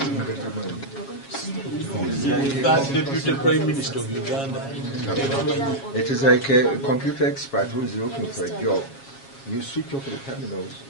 that Deputy Prime Minister of Uganda. It is like a computer expert who is looking for a job. You switch off the terminals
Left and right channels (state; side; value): late; right; 7.3 ms